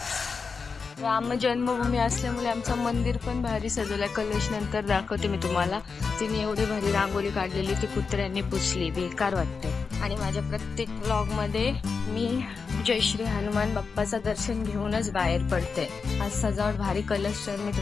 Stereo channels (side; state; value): right; quieter; 5.1 dB